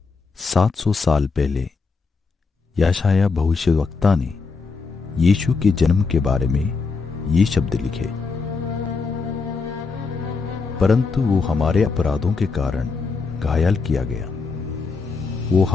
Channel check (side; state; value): right; quieter; 4.6 dB